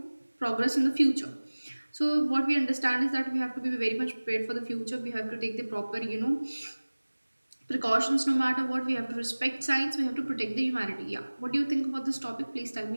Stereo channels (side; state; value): both; inverted; correlation -1.00